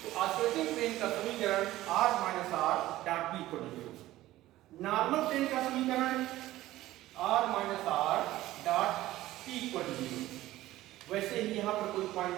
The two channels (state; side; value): quieter; left; 15.8 dB